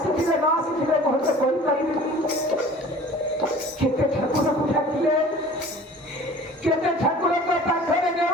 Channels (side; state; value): both; normal; correlation 0.45